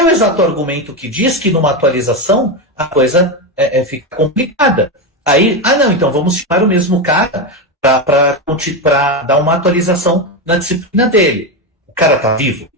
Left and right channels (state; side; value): normal; both; correlation 0.12